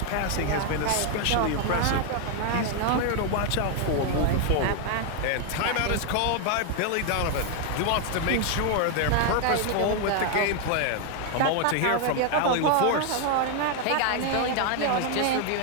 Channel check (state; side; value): different; both; correlation 0.00